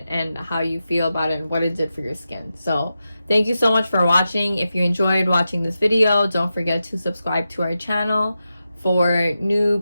and how you feel about it and what it did for your skin. So thank you so much for watching. If you enjoyed watching this video, don't forget to subscribe to our channel for new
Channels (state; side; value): inverted; both; correlation -0.91